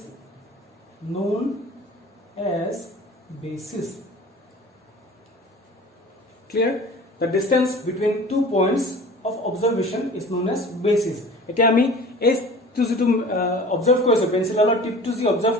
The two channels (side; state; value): both; normal; correlation 0.42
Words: known as basis. Clear? The distance between 2 points of observation is known as basis. এতিয়া আমি এই two যেটো observe কৰিছো পেন্সিলৰ টিপটো যি observe